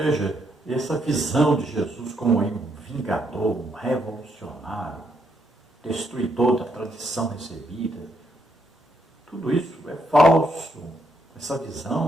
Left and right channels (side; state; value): both; normal; correlation 0.76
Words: essa visão de Jesus como um vingador, um revolucionário, destruidor da tradição recebida, tudo isso é falso. Essa